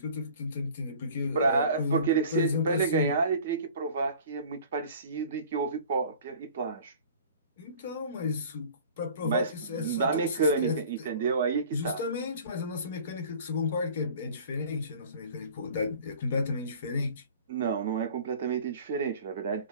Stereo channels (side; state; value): both; inverted; correlation -0.45